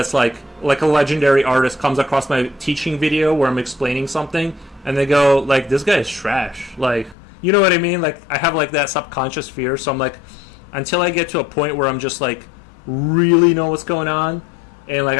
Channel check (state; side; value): drops out; right; at 7.2 s